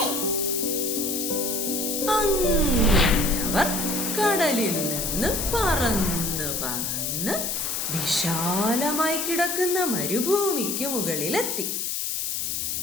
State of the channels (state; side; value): noise; left; hiss, 1 dB below the sound